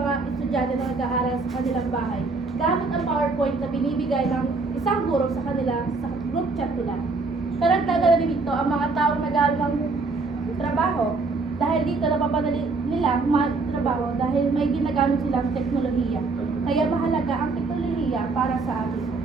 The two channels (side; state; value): left; quieter; 3.9 dB